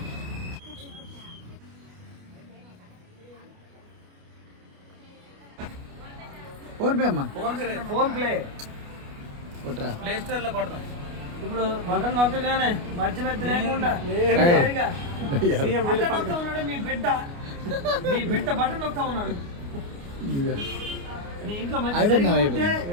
ఫోన్ పే అమ్మా, ఫోన్ ప్లే ప్లే స్టోర్ లో కొడతాం. ఇప్పుడు బటన్ నొక్కగానే మధ్య లేకుండా నొక్తా ఉన్నాడు మీ బిడ్డ బటన్ నొక్తా ఉన్నాడు. మీ ఇంట్లో మంచి 25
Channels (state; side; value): late; left; 29 ms